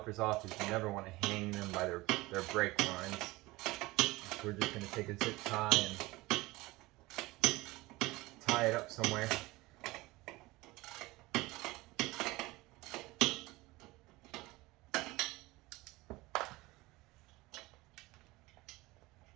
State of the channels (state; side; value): quieter; left; 20.9 dB